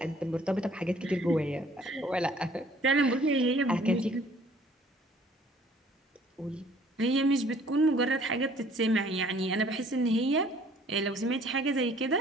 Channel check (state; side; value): normal; both; correlation 0.56